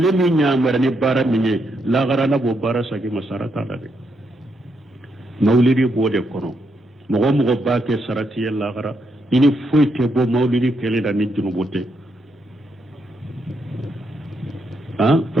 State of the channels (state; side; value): normal; both; correlation 0.79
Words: min ɲamara ni baara min ye lagara la b'o baara sagi masara t'a la dɛ mawlidi b'o de kɔnɔ mɔgɔ b'a kɛ sarati ye lagara i ni foyi tɛ bɔ mawlidi kɛlɛ la ni junubu tɛ